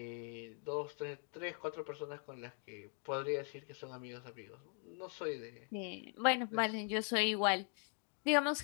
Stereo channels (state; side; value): quieter; right; 38.8 dB